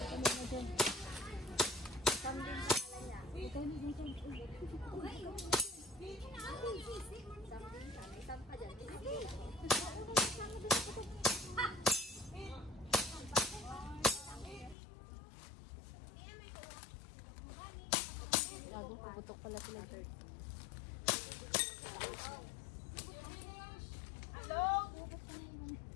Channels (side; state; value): right; drops out; at 14.8 s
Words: Gago, puputok pala sila. Hello?